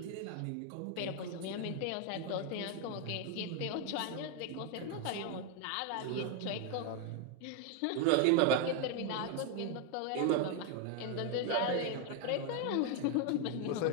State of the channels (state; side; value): different; both; correlation 0.01